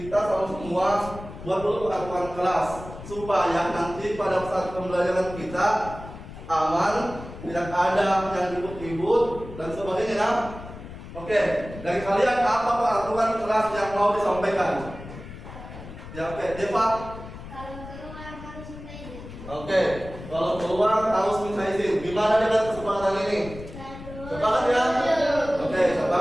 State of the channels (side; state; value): left; noise; rumble, 13 dB below the sound